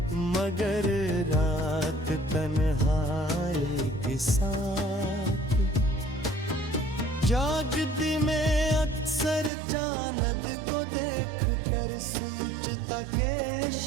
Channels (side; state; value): left; drops out; at 9.5 s